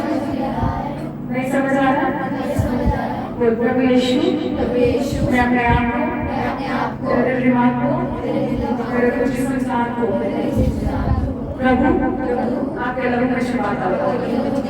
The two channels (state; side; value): identical; both; correlation 1.00